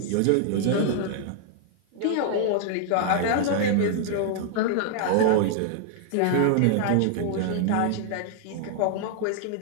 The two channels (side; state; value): both; different; correlation 0.00